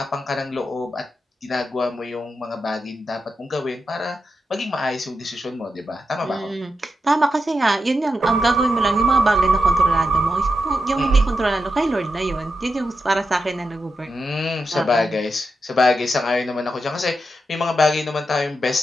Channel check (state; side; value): normal; both; correlation 0.87